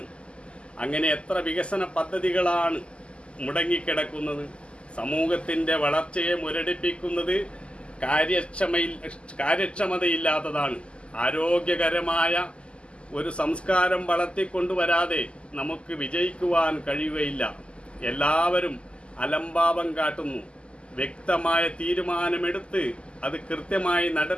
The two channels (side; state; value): right; late; 0.053 ms